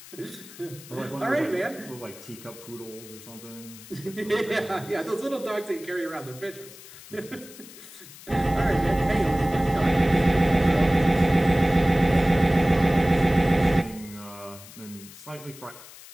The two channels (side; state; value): left; noise; hiss, 18 dB below the sound